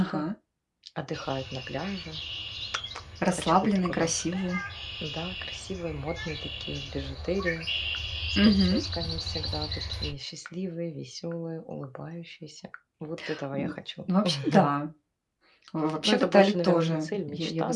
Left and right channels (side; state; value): both; identical; correlation 1.00